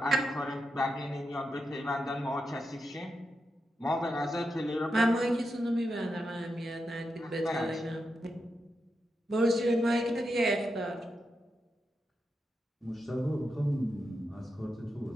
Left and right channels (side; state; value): both; normal; correlation 0.87